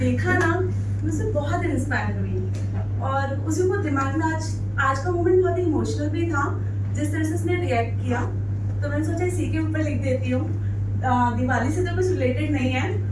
ना, मुझसे बहुत इंस्पायर हुई और उसी को दिमाग में आज का मोमेंट बहुत इमोशनल भी था, जिस तरह से उसने रिएक्ट किया। तो मैंने सोचा इसी के ऊपर लिख देती हूँ। दिवाली से तो कुछ रिलेटेड नहीं है,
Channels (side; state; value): both; identical; correlation 1.00